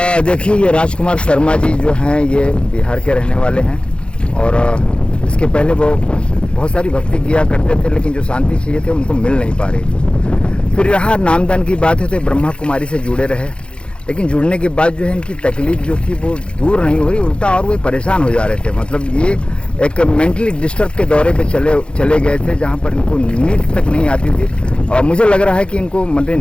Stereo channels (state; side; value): late; right; 0.056 ms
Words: देखिए, ये राजकुमार शर्मा जी जो हैं ये बिहार के रहने वाले हैं और इसके पहले वो बहुत सारी भक्ति किया करते थे, लेकिन जो शांति चाहिए थे उनको मिल नहीं पा रही थी। फिर यहाँ नामदान की बात है तो ब्रह्मा कुमारी से जुड़े रहे, लेकिन जुड़ने के बाद जो है इनकी तकलीफ जो थी वो दूर नहीं हुई, उल्टा और वो परेशान हो जा रहे थे। मतलब ये एक मेंटली डिस्टर्ब के दौरे पे चले गए थे, जहाँ पर इनको नींद तक नहीं आती थी और मुझे लग रहा है कि इनको